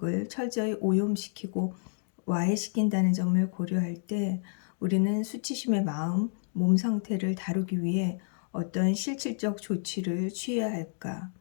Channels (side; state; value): right; silent; digital silence